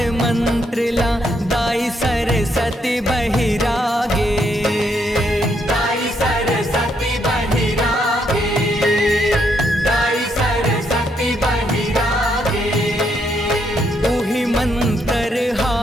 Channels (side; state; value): both; normal; correlation 0.75